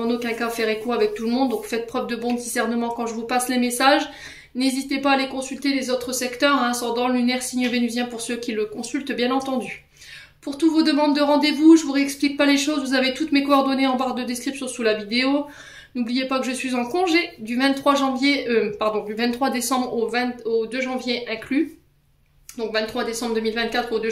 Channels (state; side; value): identical; both; correlation 1.00